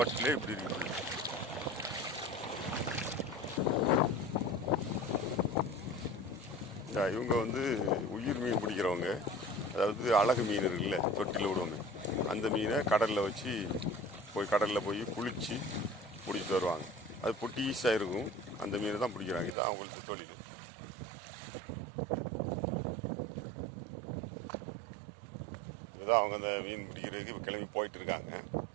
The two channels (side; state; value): left; drops out; at 19.6 s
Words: இப்படி இருக்கு. இவங்க உயிர் மீன் பிடிக்கிறவங்க. அதாவது அழகு மீன் இருக்குல்ல, தொட்டியில் விடுவாங்க. அந்த மீனை கடலில் வச்சு கடலில் போய் குளித்து பிடிச்சிட்டு வருவாங்க. அது பொட்டீஸாக இருக்கும். அந்த மீனை தான் பிடிக்கிறாங்க. இதுதான் அவங்களுக்கு தொழில். இதுதான் அவங்க அந்த மீன் பிடிக்கிறதுக்கு இப்போ கிளம்பி போயிட்டு இருக்காங்க.